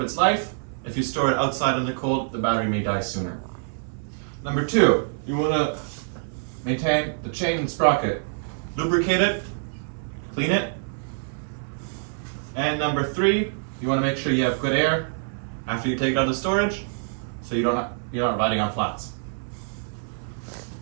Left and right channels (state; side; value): silent; left; 58 dB below the other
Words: its life. If you store it outside in the cold, the battery may die sooner. Number 2, you want to maintain the chain and sprocket. Lubricate it, clean it. And number 3, you want to make sure you have good air after you take it out of storage, so you're not riding on flats.